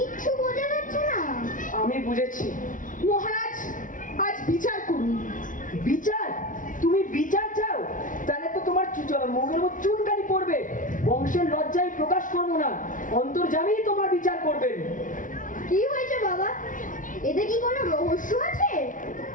বোঝা যাচ্ছে না। আমি বুঝেছি। মহারাজ, আজ বিচার করুন। বিচার? তুমি বিচার চাও? তাহলে তো তোমার মুখের উপর চুনকানি পড়বে। বংশের লজ্জায় প্রকাশ করবো না, অন্তর্যামী তোমার বিচার করবেন। কি হয়েছে বাবা? এতে কি কোনো রহস্য আছে?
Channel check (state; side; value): late; right; 0.38 ms